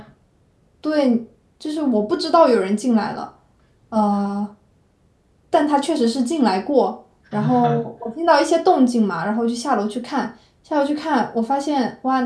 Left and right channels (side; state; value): both; identical; correlation 1.00